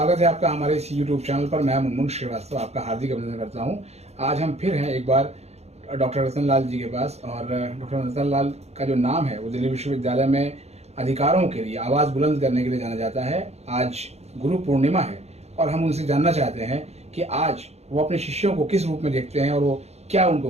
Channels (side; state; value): left; late; 0.31 ms